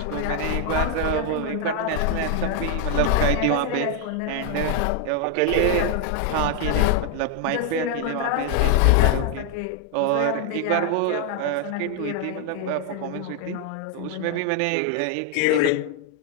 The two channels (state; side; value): different; both; correlation 0.00